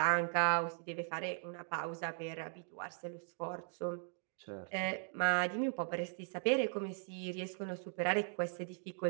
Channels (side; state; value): left; silent; 52 dB below the other